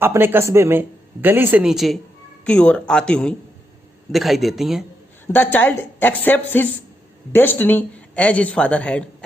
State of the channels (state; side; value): normal; both; correlation 0.82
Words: अपने कस्बे में गली से नीचे की ओर आती हुई दिखाई देती हैं। The child accepts his destiny as his father had